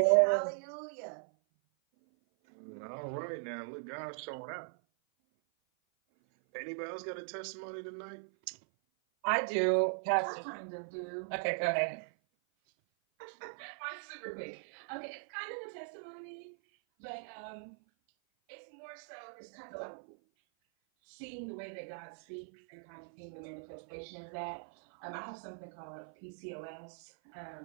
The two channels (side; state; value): left; silent; 52 dB below the other